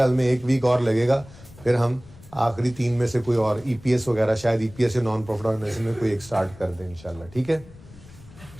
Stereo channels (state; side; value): noise; left; rumble, 21 dB below the sound